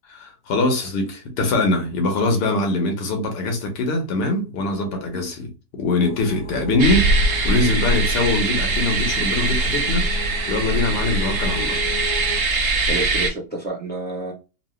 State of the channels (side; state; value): right; late; 2.8 ms